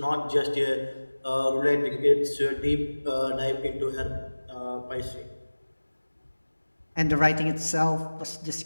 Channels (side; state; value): both; inverted; correlation -1.00